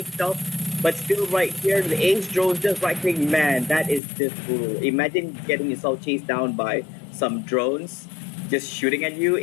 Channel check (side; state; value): right; drops out; at 4.0 s